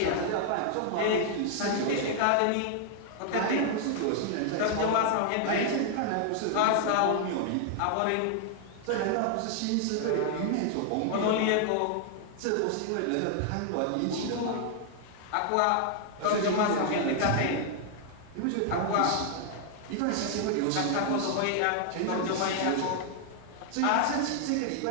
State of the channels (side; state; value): both; different; correlation 0.00